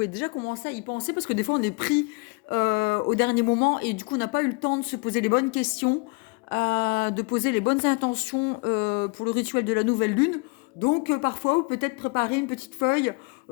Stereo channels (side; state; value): right; quieter; 30.0 dB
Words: déjà commencer à y penser parce que des fois on est pris au dernier moment et du coup on n'a pas eu le temps de se poser les bonnes questions, de poser les bonnes intentions pour le rituel de la nouvelle lune. Donc parfois vous peut-être préparer une petite feuille